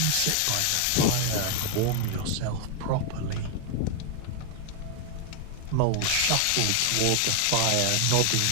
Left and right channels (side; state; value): both; different; correlation 0.00